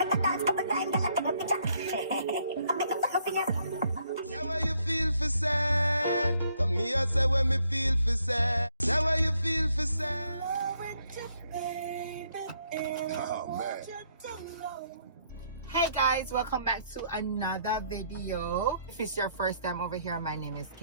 Say what you feel for say. Come here, say what me feel for say. Say what you feel for say. Oh man. Hey guys, welcome back to another video. If it's your first time over here, my name is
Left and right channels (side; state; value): both; inverted; correlation -0.71